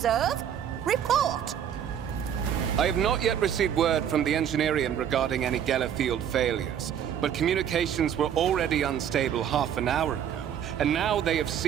Report! I have not yet received word from the Engineering regarding any Geller field failures, but communications were already unstable half an hour ago, and now they have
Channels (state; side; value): quieter; left; 9.2 dB